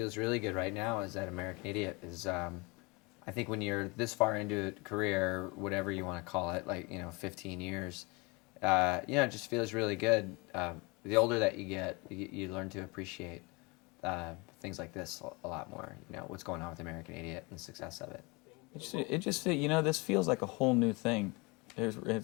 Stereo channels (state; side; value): quieter; right; 27.3 dB